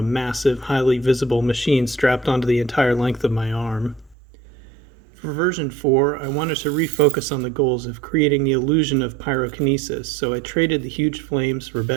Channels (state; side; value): drops out; left; at 4.2 s